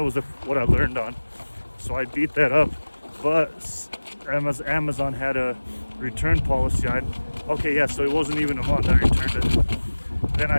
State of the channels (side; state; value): both; inverted; correlation -1.00